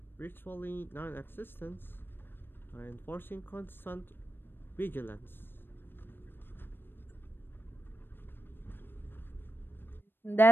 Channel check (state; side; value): late; right; 0.098 ms